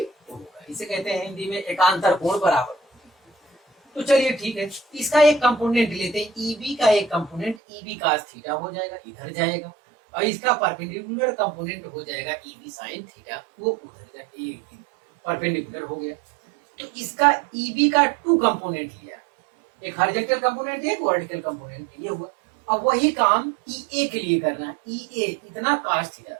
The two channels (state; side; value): drops out; left; at 7.6 s